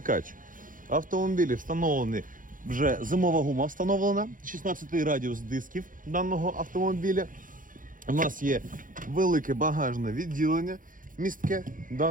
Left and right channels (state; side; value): late; left; 0.39 ms